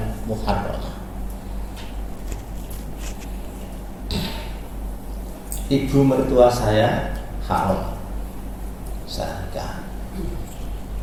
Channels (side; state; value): both; identical; correlation 1.00